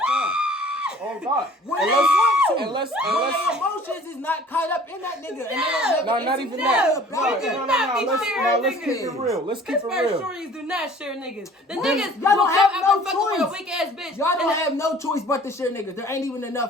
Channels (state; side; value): normal; both; correlation 0.50